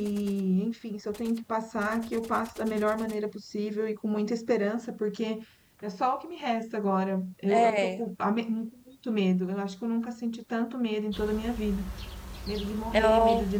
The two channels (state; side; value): identical; both; correlation 1.00